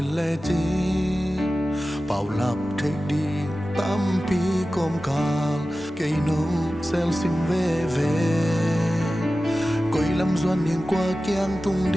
le chi bao lập thei đi tâm pi com kal cây nong sel sim ve ve coi lâm doan hiền qua kiang tung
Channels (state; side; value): normal; both; correlation 0.95